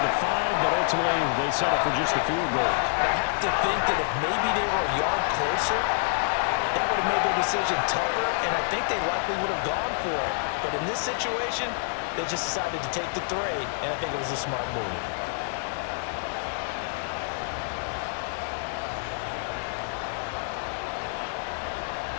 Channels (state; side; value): silent; right; digital silence